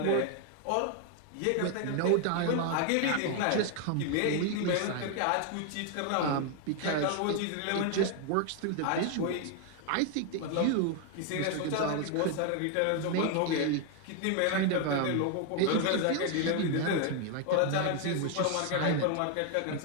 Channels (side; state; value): both; different; correlation 0.01